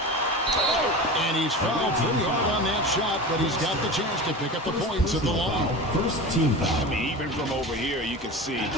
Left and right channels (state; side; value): normal; both; correlation 0.30